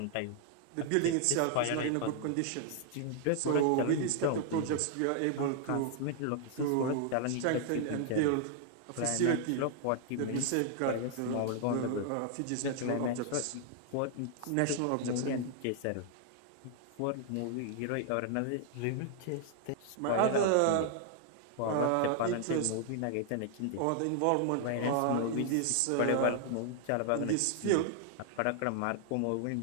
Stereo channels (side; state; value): both; different; correlation 0.00